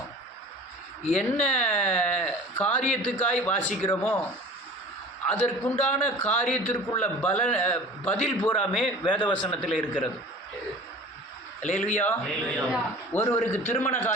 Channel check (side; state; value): both; normal; correlation 0.42